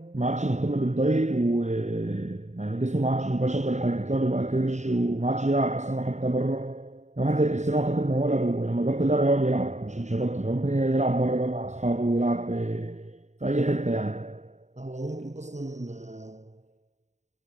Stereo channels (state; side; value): late; left; 0.34 ms